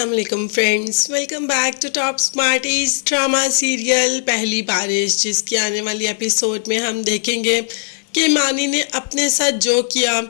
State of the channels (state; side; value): silent; right; 56 dB below the other